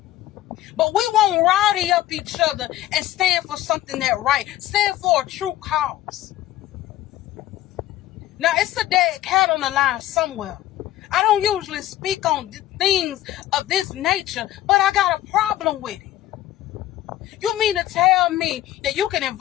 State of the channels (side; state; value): right; quieter; 14.1 dB